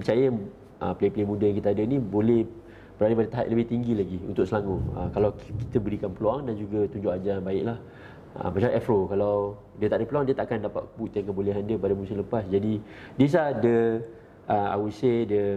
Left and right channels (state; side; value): identical; both; correlation 1.00